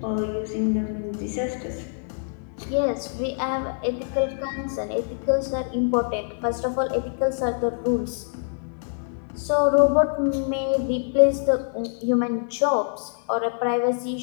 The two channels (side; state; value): right; silent; 62 dB below the other